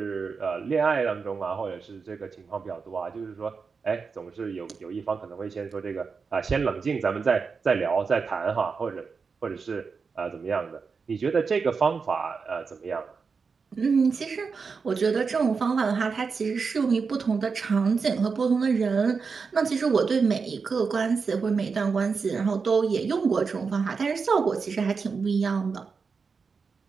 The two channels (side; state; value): left; quieter; 5.2 dB